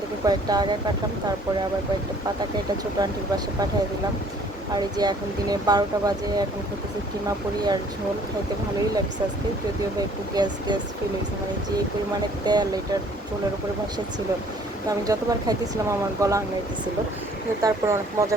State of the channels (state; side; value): normal; both; correlation 0.57